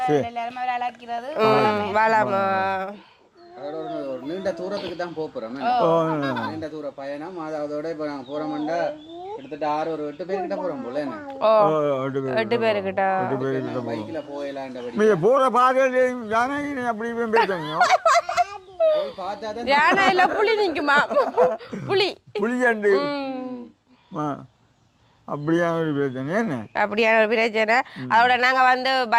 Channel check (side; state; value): both; identical; correlation 1.00